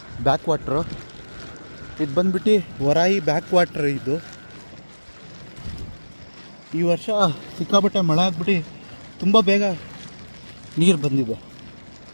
ಬ್ಯಾಕ್ ವಾಟ್ರು ಇದು ಬಂದ್ಬಿಟ್ಟು ವರಾಯಿ ಬ್ಯಾಕ್ ವಾಟ್ರ್. ಇದು ಈ ವರ್ಷ ಸಿಕ್ಕಾಪಟ್ಟೆ ಮಳೆ ಆಗ್ಬಿಟ್ಟು ತುಂಬ ಬೇಗ ನೀರು ಬಂದಿದೆ.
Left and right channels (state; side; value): inverted; both; correlation -1.00